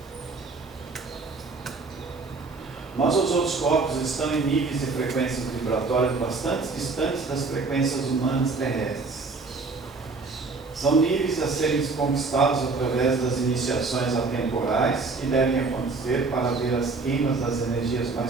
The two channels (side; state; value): left; quieter; 4.0 dB